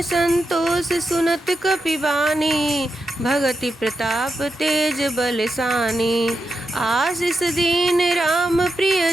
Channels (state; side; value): normal; both; correlation 0.86